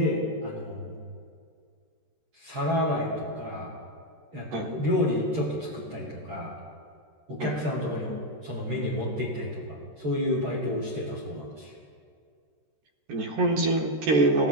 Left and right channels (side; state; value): left; late; 13 ms